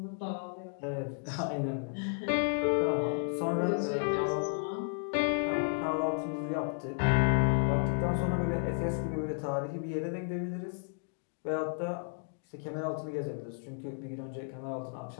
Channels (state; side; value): silent; right; 56 dB below the other